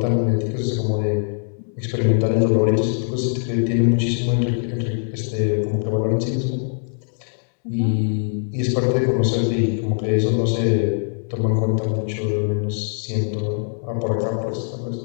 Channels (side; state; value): right; silent; digital silence